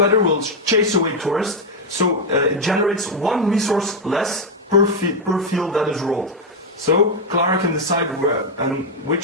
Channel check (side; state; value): both; normal; correlation 0.02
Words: will chase away tourists, so it generates 1 resource less per field that is rolled. So Clara can decide where and